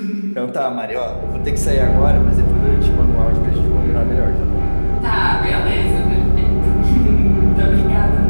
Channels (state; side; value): inverted; both; correlation -1.00